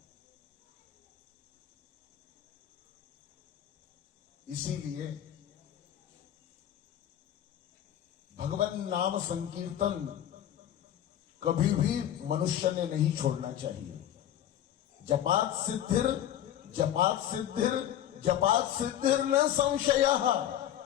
इसीलिए भगवान नाम संकीर्तन कभी भी मनुष्य ने नहीं छोड़ना चाहिए। जपात सिद्धिर न संशयः।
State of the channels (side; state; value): right; quieter; 11.3 dB